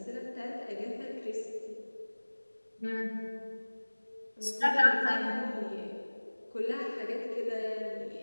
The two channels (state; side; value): inverted; both; correlation -1.00